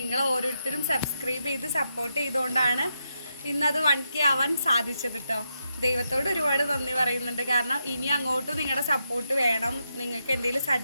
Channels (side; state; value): both; inverted; correlation -0.84